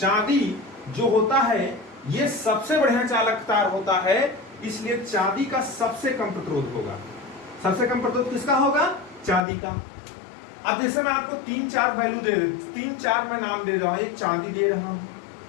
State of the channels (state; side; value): drops out; right; at 9.4 s